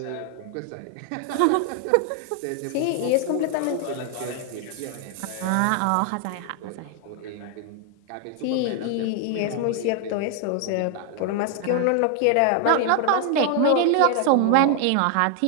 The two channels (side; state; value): both; different; correlation 0.00